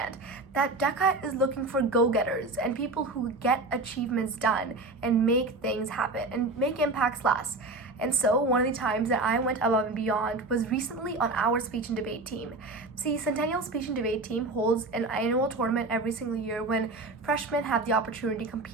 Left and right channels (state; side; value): quieter; left; 3.1 dB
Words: that DECA is looking for go-getters and people who get achievements done and make things happen and make impacts last. And so one of the times that I went above and beyond was recently on our speech and debate team. See, Centennial Speech and Debate Team holds an annual tournament every single year when freshmen have the opportunity to